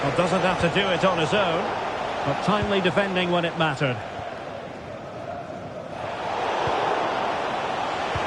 Well, doesn't have to do it on his own, but timely defending when it mattered.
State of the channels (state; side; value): identical; both; correlation 1.00